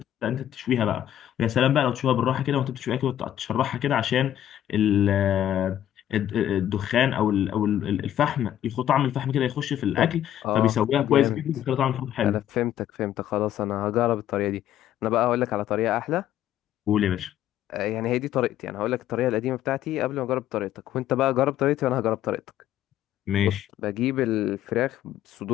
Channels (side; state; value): right; quieter; 11.6 dB